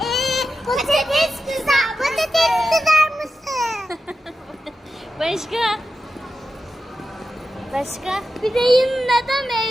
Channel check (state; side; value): normal; both; correlation 0.90